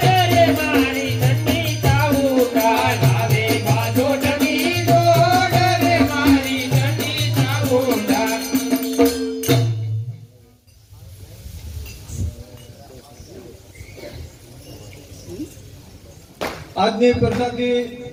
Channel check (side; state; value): both; identical; correlation 1.00